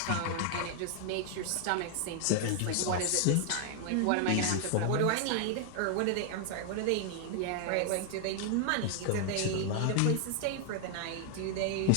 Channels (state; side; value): different; both; correlation 0.00